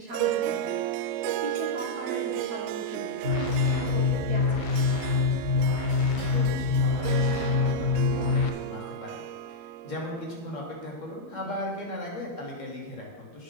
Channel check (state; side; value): late; left; 13 ms